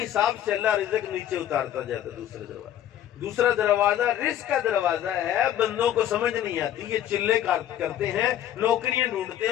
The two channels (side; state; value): right; quieter; 11.4 dB